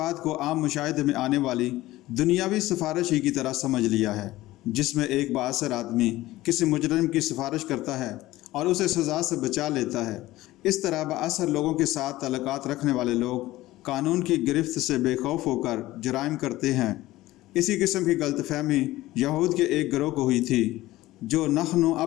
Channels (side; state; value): right; quieter; 17.0 dB